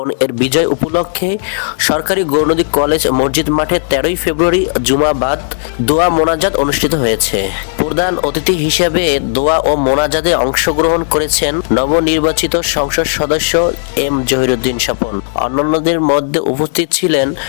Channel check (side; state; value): right; silent; digital silence